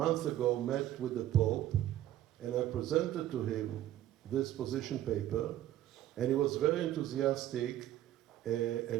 ago met with the Pope, and I presented to him this position paper, and he was very enthusiastic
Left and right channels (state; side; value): quieter; left; 13.0 dB